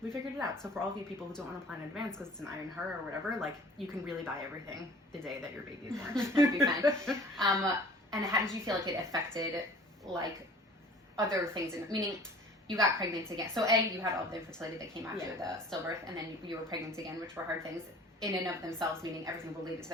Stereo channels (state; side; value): normal; both; correlation 0.47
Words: we figured it out. So for all of you people who don't want to plan in advance because it's an iron her or whatever, like you can really buy everything the day that your baby is born. That'd be fine. And how did you feel like it affected like other things? Meaning, you got pregnant again. So you had all the infertility that came after the stillbirth, and then you were pregnant again, which were hard things in and of themselves, meaning everything related to